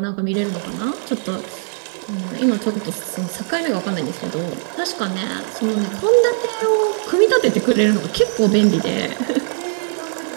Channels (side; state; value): left; silent; 66 dB below the other